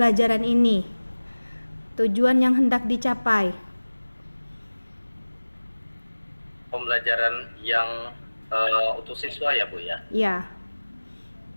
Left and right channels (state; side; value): inverted; both; correlation -1.00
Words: ini? Tujuan yang hendak dicapai. Pembelajaran yang untuk siswa ya Bu ya? Iya.